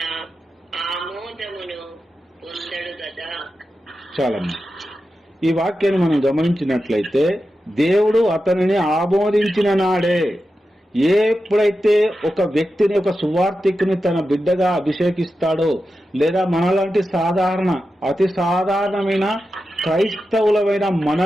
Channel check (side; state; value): both; normal; correlation 0.91